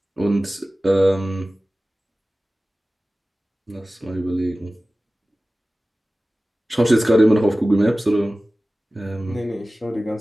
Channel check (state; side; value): normal; both; correlation 0.96